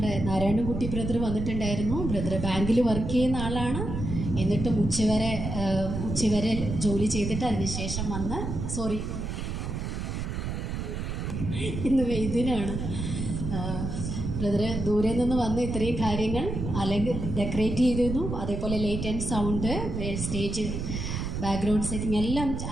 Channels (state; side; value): noise; right; rumble, 4 dB below the sound